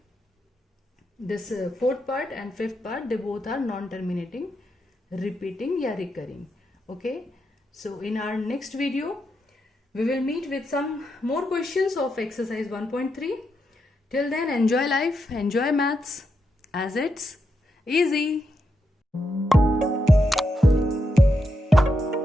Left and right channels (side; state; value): both; normal; correlation 0.83